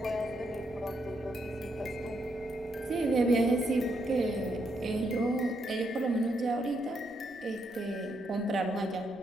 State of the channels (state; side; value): noise; left; rumble, 29 dB below the sound